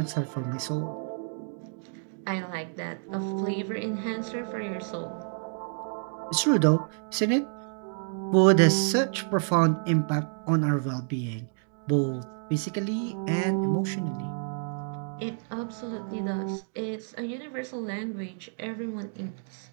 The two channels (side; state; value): left; silent; digital silence